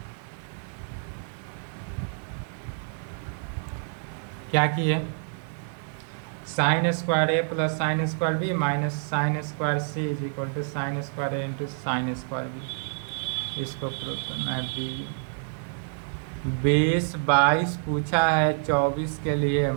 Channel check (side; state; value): left; silent; 60 dB below the other